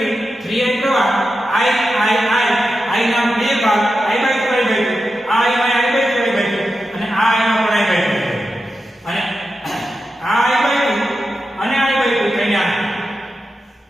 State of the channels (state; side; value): normal; both; correlation 0.90